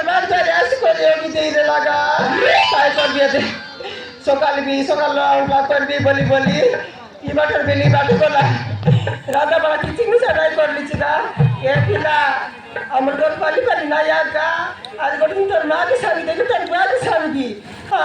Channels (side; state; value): both; identical; correlation 1.00